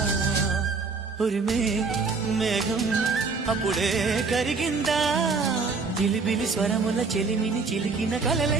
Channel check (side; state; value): left; quieter; 4.4 dB